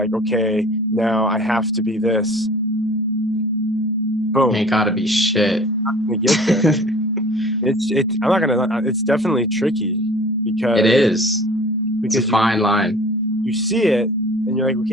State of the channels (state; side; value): normal; both; correlation 0.46